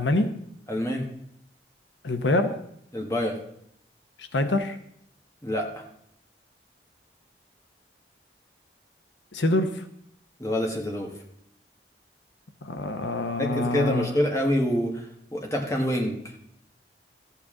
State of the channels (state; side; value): normal; both; correlation 0.62